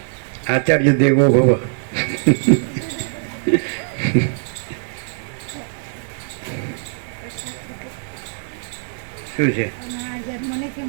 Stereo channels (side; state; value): left; silent; digital silence